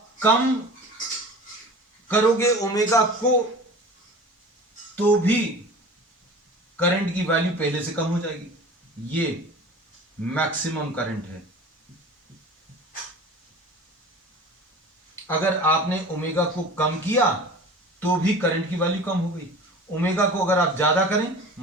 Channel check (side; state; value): both; normal; correlation 0.39